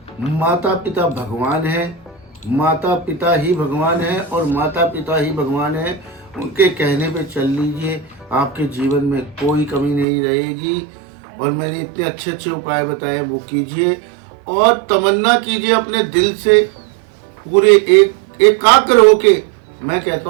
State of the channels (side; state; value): left; drops out; at 10.1 s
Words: माता पिता भगवान है, माता पिता ही भगवान है और माता पिता ही भगवान है, उनके कहने पे चल लीजिए, आपके जीवन में कोई कमी नहीं रहेगी। और मैंने इतने अच्छे अच्छे उपाय बताए वो कीजिए और तमन्ना कीजिए अपने दिल से, पूरे एकाग्र होके। मैं कहता